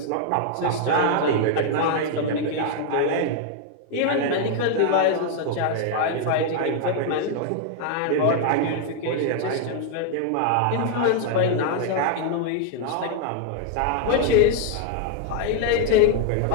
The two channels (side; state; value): both; different; correlation 0.00